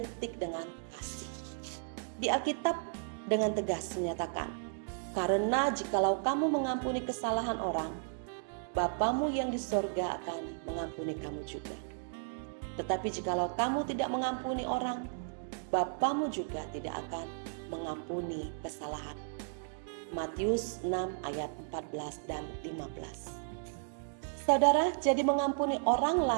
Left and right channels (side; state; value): left; silent; digital silence